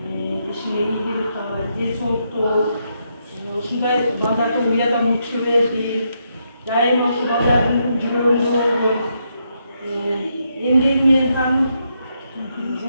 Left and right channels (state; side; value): inverted; both; correlation -0.79